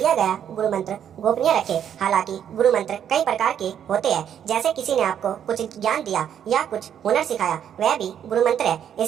गया गुरु मंत्र गोपनीय रखें। हालांकि गुरु मंत्र कई प्रकार के होते हैं, जैसे किसी ने आपको कुछ ज्ञान दिया या कुछ हुनर सिखाया, वह भी गुरु मंत्र है।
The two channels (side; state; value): left; quieter; 9.2 dB